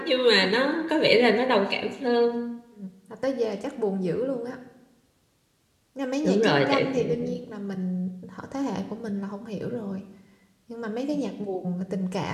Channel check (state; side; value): identical; both; correlation 1.00